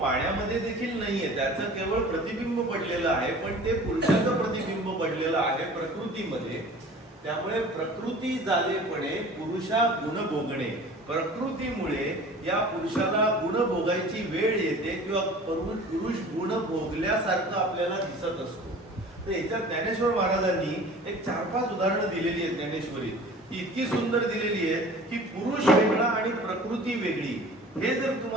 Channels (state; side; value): normal; both; correlation 0.43